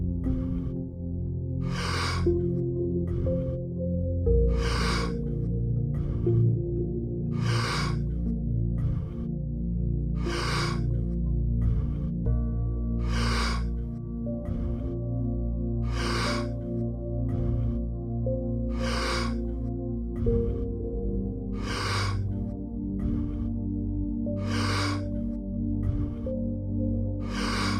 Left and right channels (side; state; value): both; identical; correlation 1.00